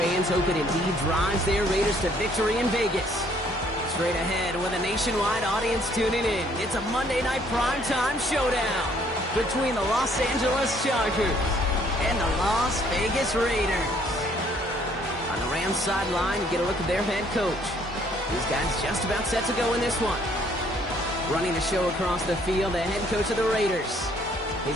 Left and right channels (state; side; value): normal; both; correlation 0.63